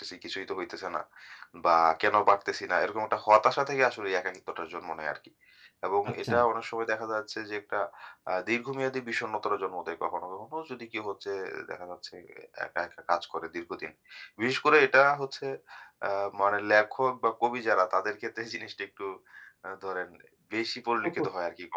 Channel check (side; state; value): both; identical; correlation 1.00